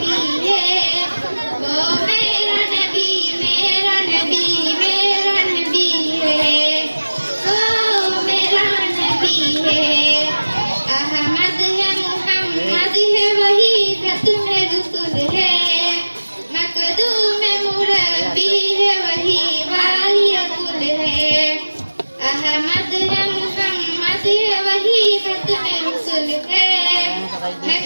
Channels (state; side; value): inverted; both; correlation -1.00